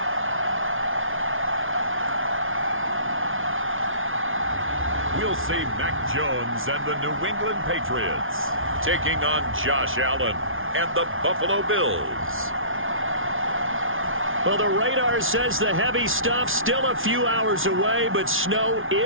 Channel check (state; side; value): late; left; 0.58 ms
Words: We'll see Mac Jones and the New England Patriots taking on Josh Allen and the Buffalo Bills. Well, the radar says the heavy stuff still a few hours away, but snow